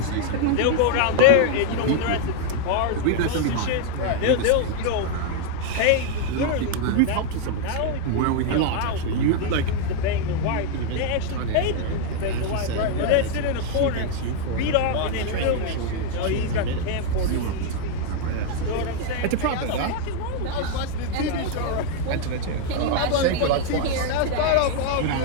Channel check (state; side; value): different; both; correlation 0.00